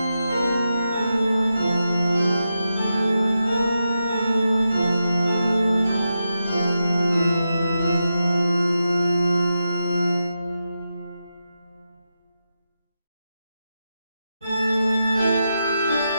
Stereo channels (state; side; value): inverted; both; correlation -0.87